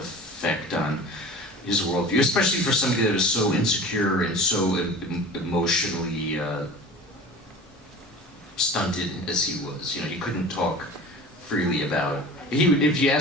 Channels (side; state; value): both; normal; correlation 0.39